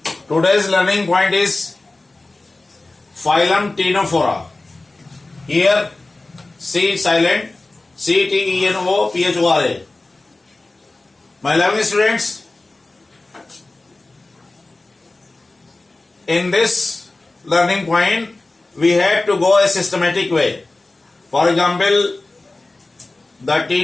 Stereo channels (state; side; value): quieter; right; 3.1 dB